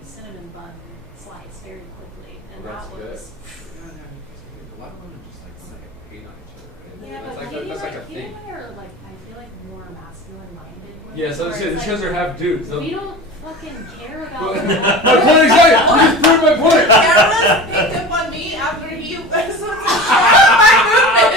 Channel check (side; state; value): both; normal; correlation 0.33